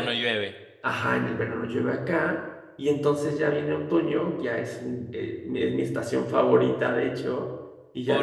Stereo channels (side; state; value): both; identical; correlation 1.00